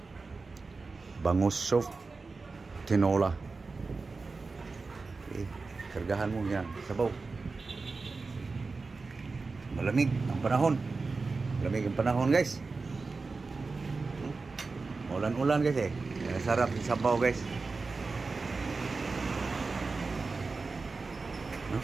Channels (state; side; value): quieter; left; 4.0 dB